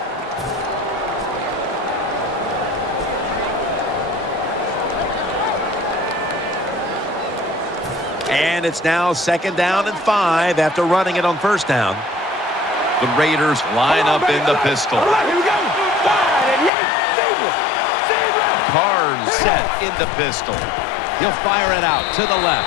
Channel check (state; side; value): drops out; right; at 16.7 s